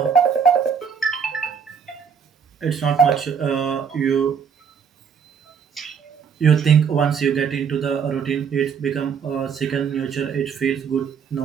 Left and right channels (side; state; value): left; quieter; 6.8 dB